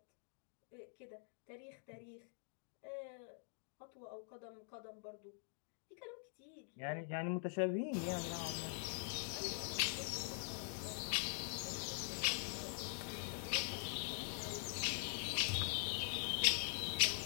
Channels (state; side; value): silent; right; digital silence